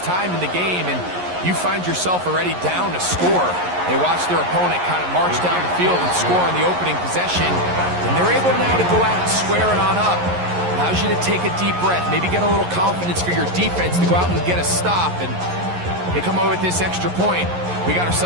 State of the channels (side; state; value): left; late; 11 ms